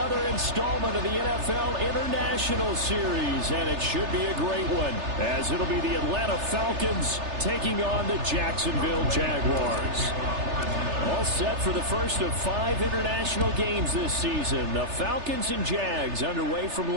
installment of the NFL International Series, and it should be a great one, as it'll be the Atlanta Falcons taking on the Jacksonville Jaguars. All set for the first of 5 international games this season. The Falcons and Jags underway from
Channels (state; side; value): late; left; 3.3 ms